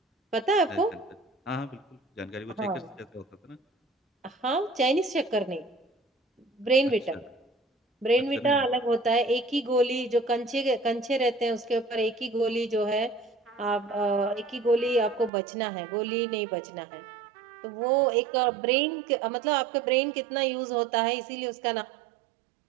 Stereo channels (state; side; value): drops out; left; at 15.3 s